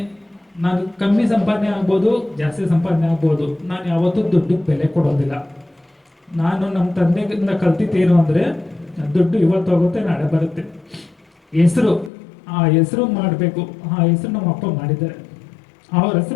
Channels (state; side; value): drops out; right; at 12.1 s